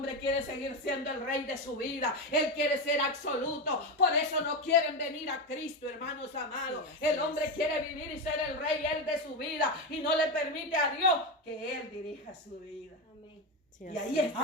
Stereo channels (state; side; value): normal; both; correlation 0.13